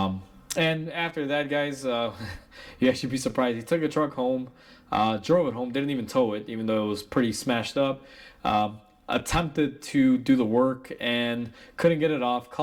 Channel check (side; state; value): both; identical; correlation 1.00